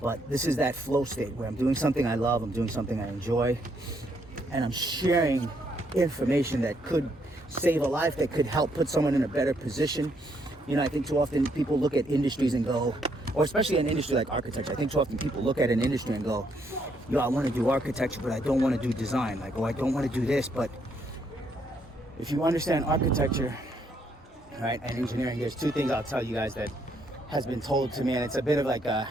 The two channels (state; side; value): normal; both; correlation 0.73